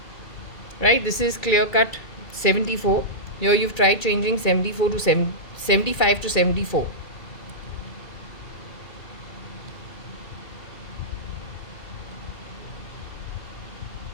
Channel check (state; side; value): late; right; 2.3 ms